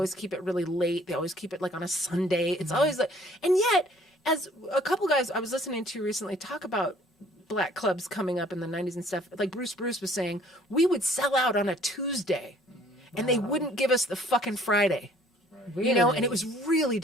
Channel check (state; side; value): normal; both; correlation 0.57